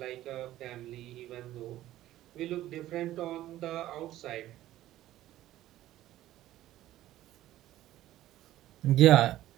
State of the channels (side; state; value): left; quieter; 14.3 dB